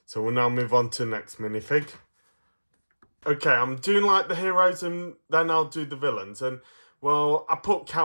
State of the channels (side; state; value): both; inverted; correlation -1.00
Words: So we'll now move on to the next minifig. Okay, I'm doing like the heroes and then I'll do the villains. And well, I put